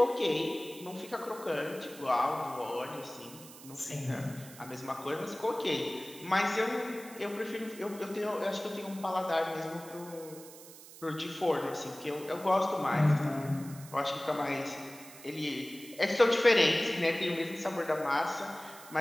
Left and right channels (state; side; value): noise; right; hiss, 17 dB below the sound